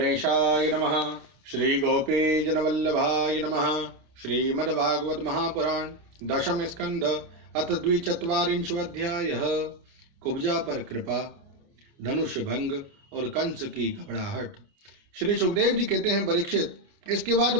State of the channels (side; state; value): left; late; 29 ms